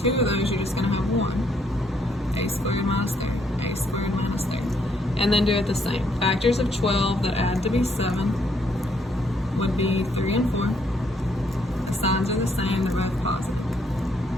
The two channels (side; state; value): both; normal; correlation 0.71